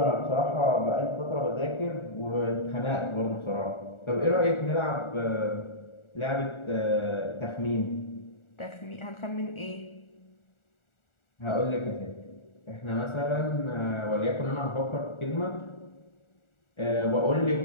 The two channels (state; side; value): late; right; 1.4 ms